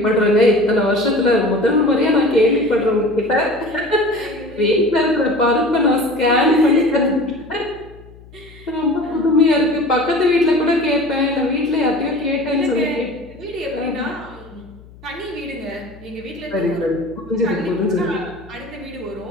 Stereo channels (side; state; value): left; noise; hum, 22 dB below the sound